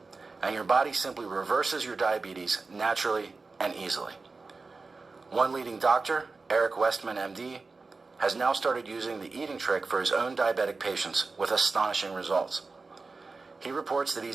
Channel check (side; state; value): left; quieter; 4.0 dB